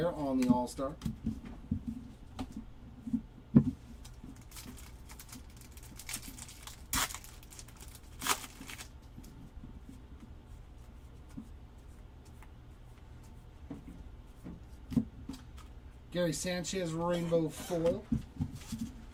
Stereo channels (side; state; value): both; identical; correlation 1.00